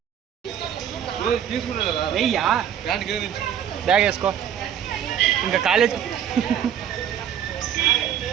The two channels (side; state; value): left; quieter; 9.3 dB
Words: తీసుకున్నా కదా వెయ్యా ప్యాంట్కి ఏమి బ్యాగ్ వేసుకో ఇంకా కాలేజ్